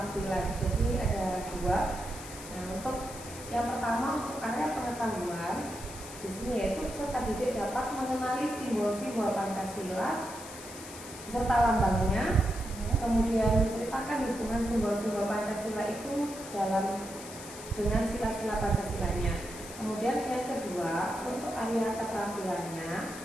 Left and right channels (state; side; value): noise; left; hiss, 14 dB below the sound